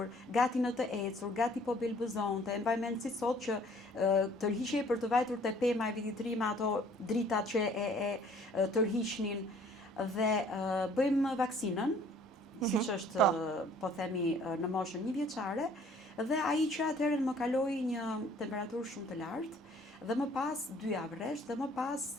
gati në të ecur, gati po belbëzonte. Mbaj mend si sot që tërhiqej për të vajtur te pema e vitit të ri me ato dritat që e tërhiqnin, dhe bëjmë vaksinën, siç është po themi në moshën 1 vjeçare, dhe ai që atëherë më kaloi një temperaturë shumë të lartë, dhe më pas 2 javë rresht, dhe më pas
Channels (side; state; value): both; normal; correlation 0.56